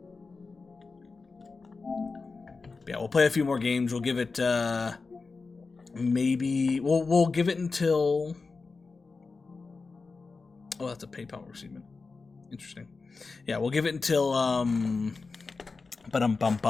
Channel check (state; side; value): quieter; right; 4.2 dB